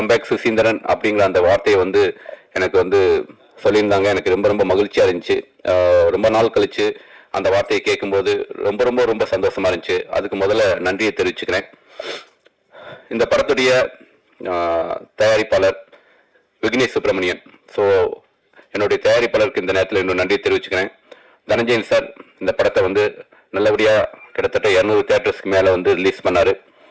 சுசீந்திரன் அப்படிங்கிற அந்த வார்த்தையை வந்து எனக்கு வந்து சொல்லியிருந்தாங்க. எனக்கு ரொம்ப ரொம்ப மகிழ்ச்சியாக இருந்துச்சு. ரொம்ப நாள் கழிச்சு அந்த வார்த்தையை கேட்கும்போது ரொம்ப ரொம்ப ரொம்ப சந்தோஷமா இருந்துச்சு. அதுக்கு முதல்ல நன்றியை தெரிவிச்சுக்கிறேன். இந்த படத்துடைய தயாரிப்பாளர் விக்னேஷ் சுப்பிரமணியன். ஸோ என்னுடைய தயாரிப்பாளருக்கு இந்த நேரத்தில் இன்னும் நன்றியை தெரிவிச்சுக்கிறேன். தனஞ்சயன் சார் இந்த படத்தை வந்து நல்லபடியாக கிட்டத்தட்ட 200 தியேட்டர்ஸ்க்கு மேலே வந்து ரிலீஸ் பண்ணார்.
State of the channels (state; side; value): identical; both; correlation 1.00